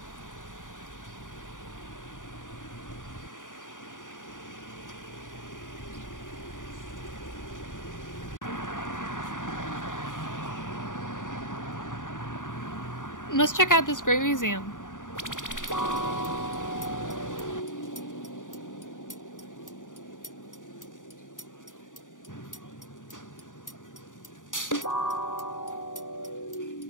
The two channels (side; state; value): right; late; 0.87 ms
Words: Let's check out this great museum.